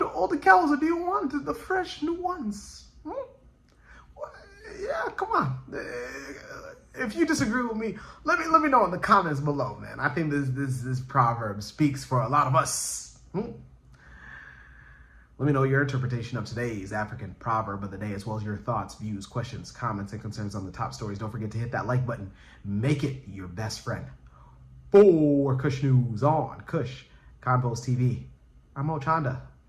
old cows or do you want the fresh new ones? Yeah, come on. If you disagree with me, let me know in the comments below, man. I think this proverb speaks for a lot of us. Let me know your interpretation of today's African proverb of the day, as well as your thoughts, views, questions, comments, and concerns on the top stories. Don't forget to hit that like button. Make it your best friend. For Kush News on Kush Convos TV, I'm Ochanda.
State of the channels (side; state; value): both; identical; correlation 1.00